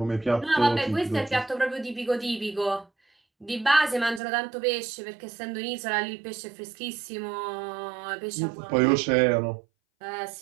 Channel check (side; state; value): left; drops out; at 4.2 s